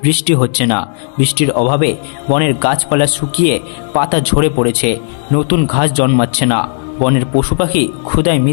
বৃষ্টি হচ্ছে না। বৃষ্টির অভাবে বনের গাছপালা শুকিয়ে পাতা ঝরে পড়েছে, নতুন ঘাস জন্মাচ্ছে না। বনের পশু পাখি ক্ষুধায়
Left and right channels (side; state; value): right; silent; digital silence